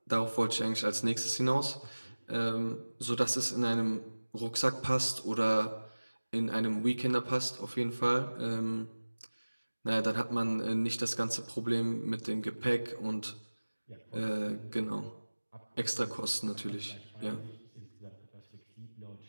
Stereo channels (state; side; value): inverted; both; correlation -1.00